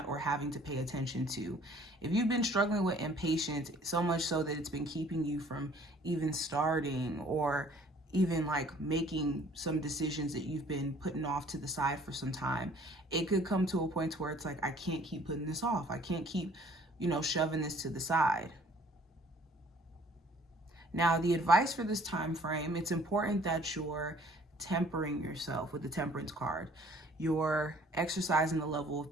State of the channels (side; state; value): both; normal; correlation 0.56